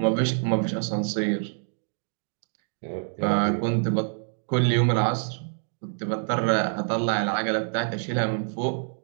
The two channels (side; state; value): left; silent; 61 dB below the other